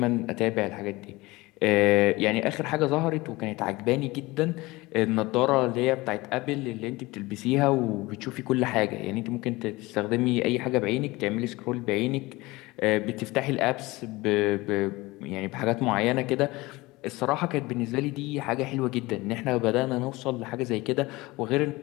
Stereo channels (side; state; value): right; quieter; 21.3 dB